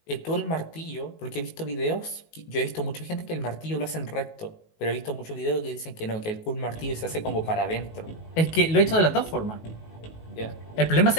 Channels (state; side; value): late; right; 19 ms